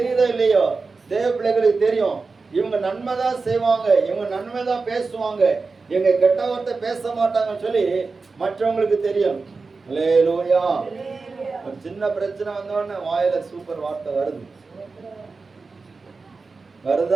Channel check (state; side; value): quieter; left; 4.2 dB